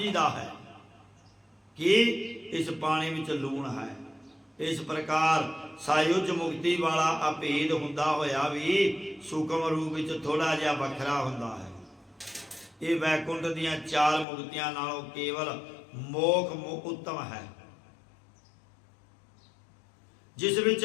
है कि इस पानी विच लूण है। इस प्रकार सायुज मुक्ति वाला अभेद हुंदा होया भी सूक्ष्म रूप विच थोड़ा जिहा वखरा हुंदा है। ये वैकुंठ दीआं चार मुक्तियां नालों केवल मोख उत्तम है, जिस विच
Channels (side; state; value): right; drops out; at 14.2 s